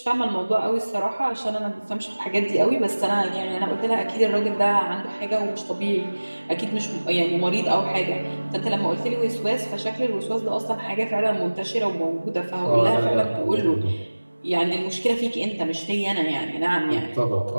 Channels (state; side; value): inverted; both; correlation -1.00